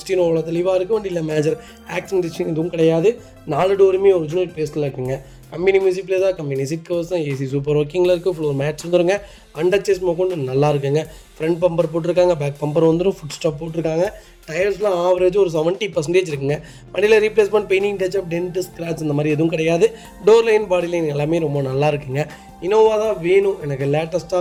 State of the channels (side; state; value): both; identical; correlation 1.00